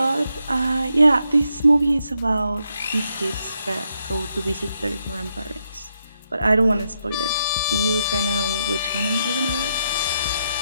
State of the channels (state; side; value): inverted; both; correlation -0.80